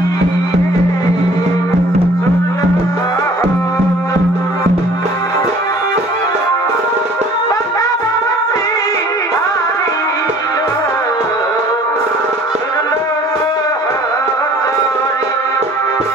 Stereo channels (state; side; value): normal; both; correlation 0.52